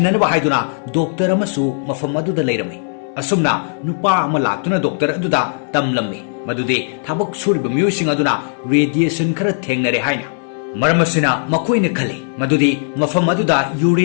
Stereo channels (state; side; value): silent; right; 68 dB below the other